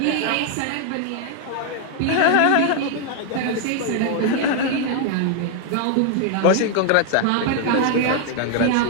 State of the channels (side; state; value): both; different; correlation 0.00